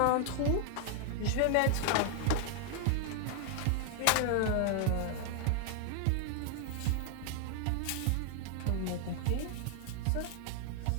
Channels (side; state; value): both; different; correlation 0.00